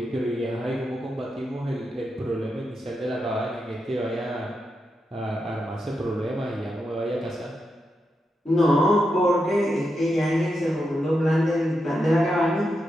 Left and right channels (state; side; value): normal; both; correlation 0.86